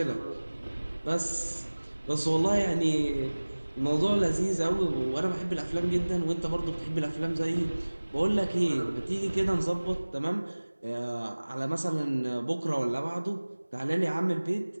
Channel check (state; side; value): inverted; both; correlation -1.00